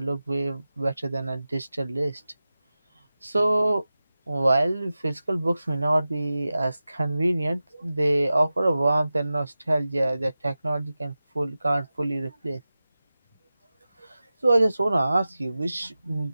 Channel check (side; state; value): both; inverted; correlation -0.95